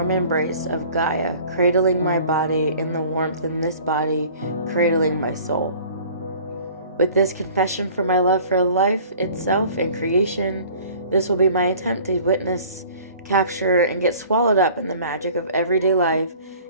embrace of Gaia cradling my body and the warmth in this body cradling my soul. With this confession for my love for life itself and creation, this will be my attempt to witness, capture, and get swallowed up in the magic of everyday life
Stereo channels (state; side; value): inverted; both; correlation -0.48